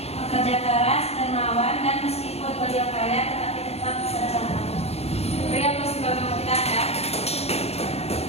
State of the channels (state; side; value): late; right; 0.30 ms